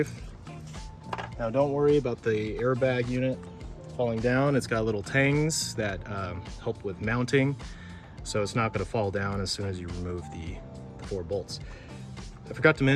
Now don't worry about the airbag unit falling down. It's got little tangs that help with mounting, so it's not going to fall down as soon as you remove the 4 bolts. I forgot to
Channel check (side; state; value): both; identical; correlation 1.00